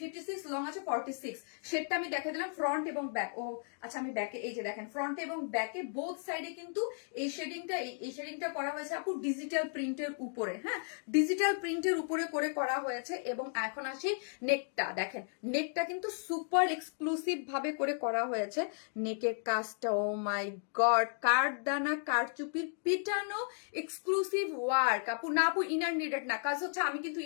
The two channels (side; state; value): right; silent; 55 dB below the other